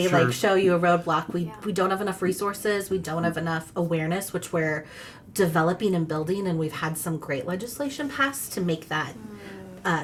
Sure. like show you a roadblock. We don't have enough resources. We don't have enough awareness, which we're developing and building, and we've had some great legislation passed to make that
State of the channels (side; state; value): both; identical; correlation 1.00